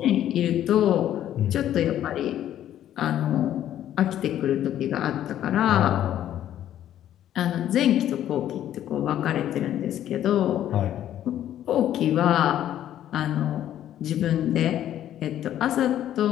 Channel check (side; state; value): right; quieter; 11.5 dB